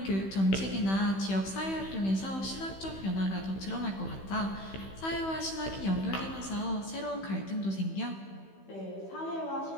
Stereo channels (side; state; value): right; late; 15 ms